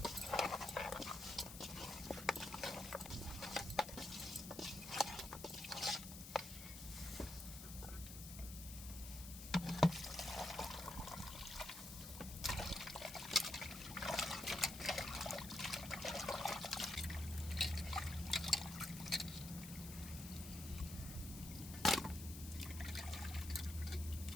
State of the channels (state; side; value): noise; left; hiss, 11 dB below the sound